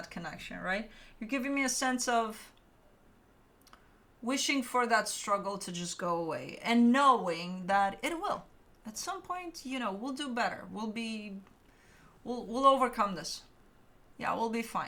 connection, right? You're giving me a sense of wishing for that struggle to just go away and knowing that it will. At some point, you know, we'll do better. We'll overcome this. Yeah, we'll be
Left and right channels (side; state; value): both; identical; correlation 1.00